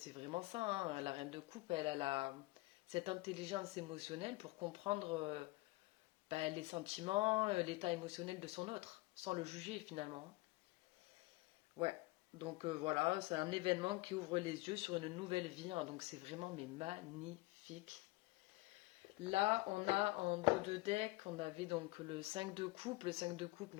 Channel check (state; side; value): quieter; right; 21.7 dB